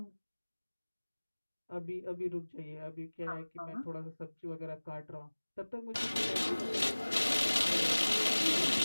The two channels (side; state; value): both; inverted; correlation -1.00